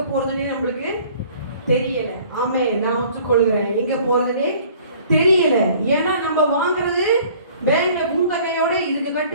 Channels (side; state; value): both; inverted; correlation -0.53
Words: போறதுன்னே நம்மளுக்கு தெரியல. ஆமே, நான் ஒத்துக்கொள்கிறேன், எங்க போறதுன்னே தெரியல. ஏன்னா நம்ம வாங்குறது பேங்க்ல பூந்தகையோட இதுக்கு